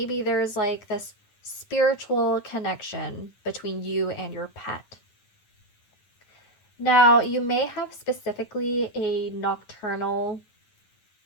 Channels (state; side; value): late; right; 9.5 ms